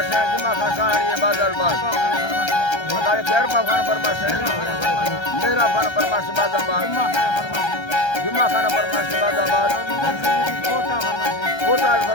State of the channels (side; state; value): right; late; 1.3 ms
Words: है जुमा खान शाहरी बाजार बाग बताए गैरपा खान फरमाश है मेरा खान फरमाश बाजार बाग जुमा खान फरमाश बाजार बाग कोटा